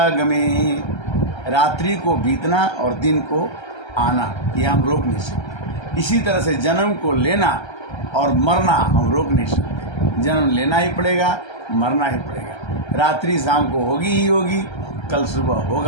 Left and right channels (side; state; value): right; late; 1.3 ms